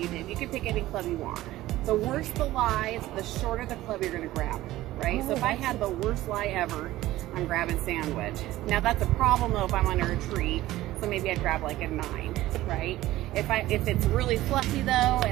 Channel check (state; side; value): quieter; left; 16.0 dB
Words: did, you could pick any club you want. The worse the lie, the shorter the club you're gonna grab, right? So if I had the worst lie ever, I'm grabbing sandwich. Now that's a problem though if I'm under a tree, so maybe I'd grab like a 9, right? If it's really fluffy though,